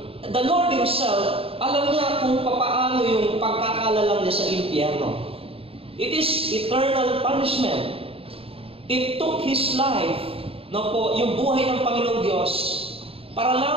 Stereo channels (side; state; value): left; late; 0.27 ms